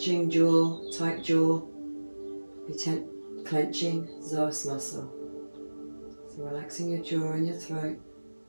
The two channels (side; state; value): both; inverted; correlation -1.00